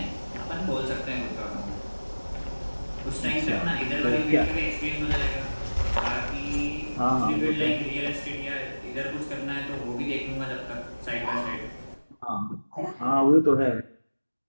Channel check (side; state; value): both; inverted; correlation -1.00